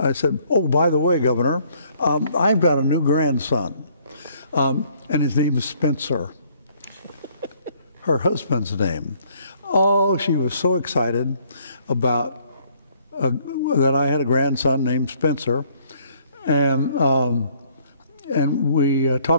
said, oh, by the way, Governor, I've got a new grandson, and his name is Spencer, her husband's name. Oh, she was so excited about that I had a grandson named Spencer, and we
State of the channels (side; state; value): both; inverted; correlation -0.64